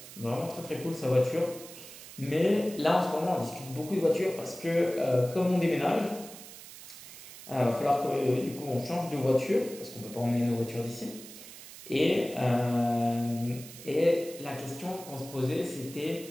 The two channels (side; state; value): right; noise; hiss, 15 dB below the sound